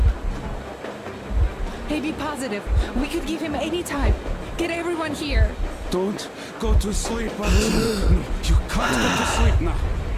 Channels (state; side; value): identical; both; correlation 1.00